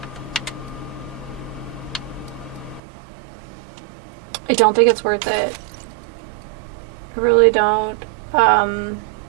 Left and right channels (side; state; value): left; drops out; at 2.8 s